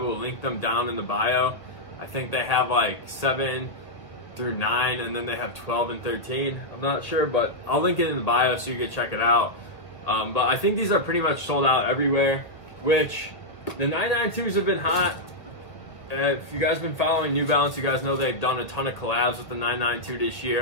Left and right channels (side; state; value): right; late; 1.6 ms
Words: link them down in the bio. I think they have like 7 through 9, and then they have 12 and 13. I'm not sure, but I'll link it in the bio so you can check it out. But I think these are pretty much sold out everywhere, which the 992s have been hot. If you guys have been following New Balance, you guys know they've done a ton of collabs with the 992 this